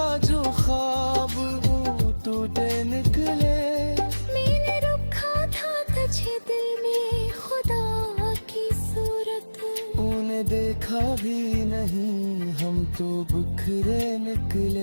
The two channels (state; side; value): inverted; both; correlation -1.00